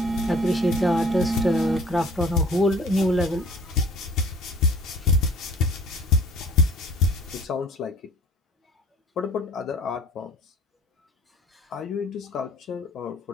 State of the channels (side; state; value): both; normal; correlation 0.50